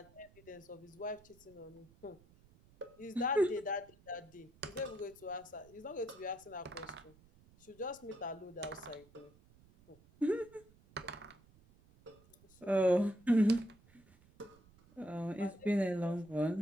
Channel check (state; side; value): noise; right; rumble, 27 dB below the sound